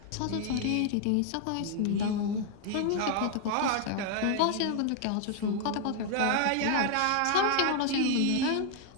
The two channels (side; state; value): both; different; correlation 0.00